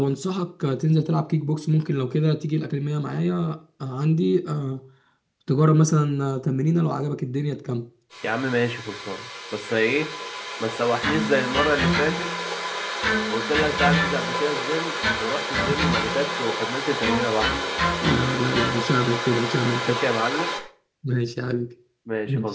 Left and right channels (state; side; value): identical; both; correlation 1.00